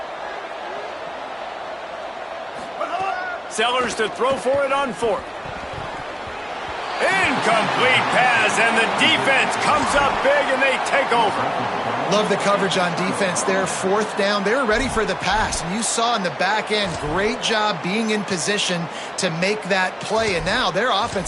Sellers to throw for it on 4th. Incomplete pass, and the defense comes up big, and they take over. Love the coverage on defense there. 4th down, they were ready for the pass. And you saw in the back end, great job being in position to make that play. And now their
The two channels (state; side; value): identical; both; correlation 1.00